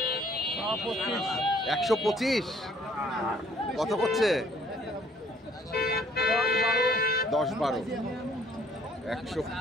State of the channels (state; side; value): normal; both; correlation 0.60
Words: 125 কত করছে? 10-12,